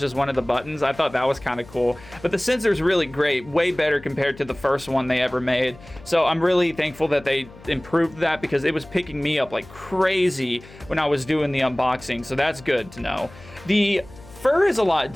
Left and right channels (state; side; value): noise; left; hum, 20 dB below the sound